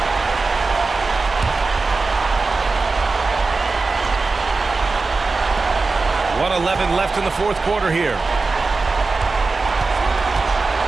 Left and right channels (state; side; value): quieter; left; 3.9 dB